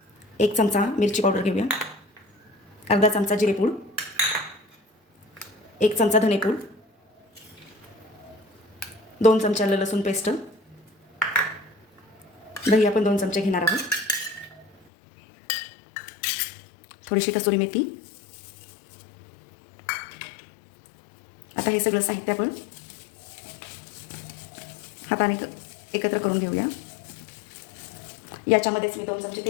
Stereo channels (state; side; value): drops out; right; at 14.7 s